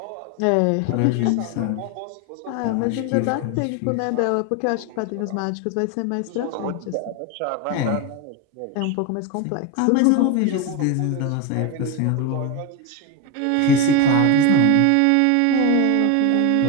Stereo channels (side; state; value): both; different; correlation 0.02